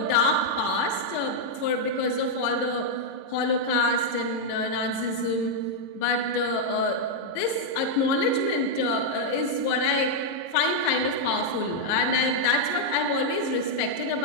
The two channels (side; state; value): right; late; 22 ms